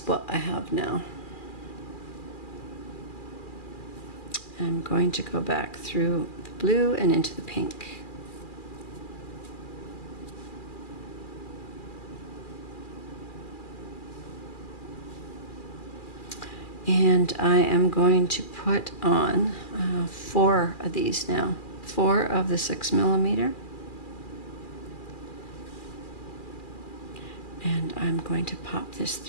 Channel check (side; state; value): right; late; 2.4 ms